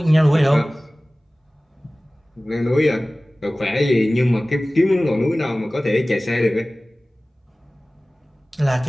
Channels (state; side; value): normal; both; correlation 0.98